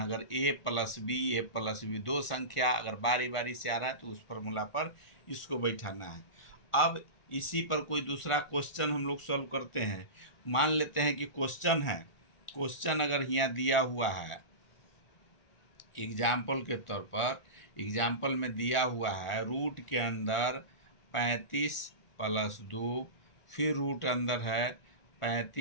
अगर ए प्लस बी दो संख्या अगर बारी बारी से आ रहा है तो उस फार्मूला पर इसको बैठाना है। अब इसी पर कोई दूसरा क्वेश्चन हम लोग सॉल्व करते हैं। मान लेते हैं कि क्वेश्चन है, क्वेश्चन अगर यहाँ दिया हुआ है, एग्जाम्पल के तौर पर, एग्जाम्पल में दिया हुआ है रूट के अंदर 35 प्लस 2, फिर रूट अंदर है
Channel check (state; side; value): late; right; 1.4 ms